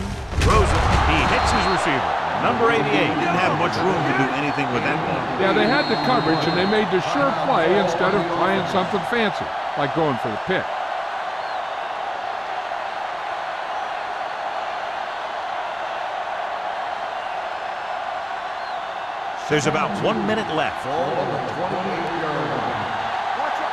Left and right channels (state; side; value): identical; both; correlation 1.00